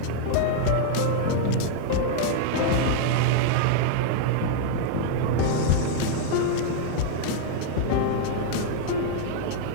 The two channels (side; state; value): both; different; correlation -0.01